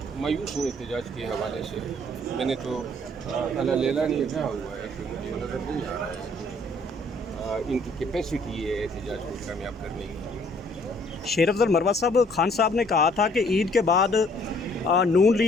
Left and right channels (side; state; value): both; normal; correlation 0.61